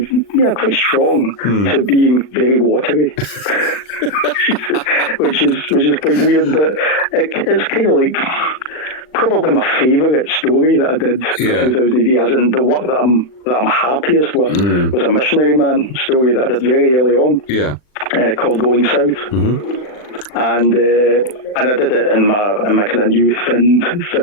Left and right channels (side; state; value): right; late; 39 ms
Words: quite strong to being very watery, which is quite weird. But it's kind of like probably my favourite story that I did for 2000 AD, as in the work that I'm happiest with, was a missionary man story that I did very early on, called Going South. And I did it in my kind of new